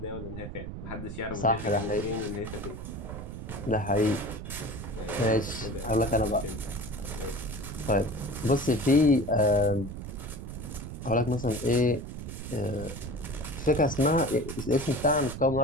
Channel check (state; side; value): noise; right; rumble, 9 dB below the sound